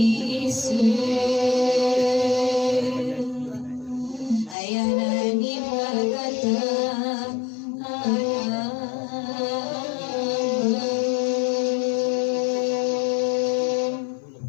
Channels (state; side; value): drops out; right; at 4.5 s